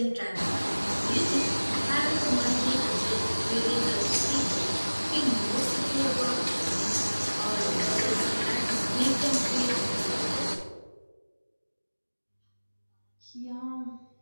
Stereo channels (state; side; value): inverted; both; correlation -1.00